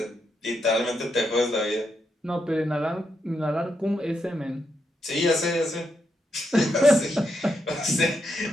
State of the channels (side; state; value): both; normal; correlation 0.82